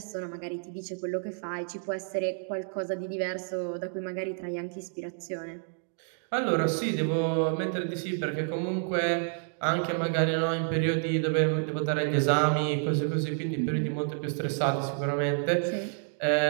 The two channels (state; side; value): silent; left; 58 dB below the other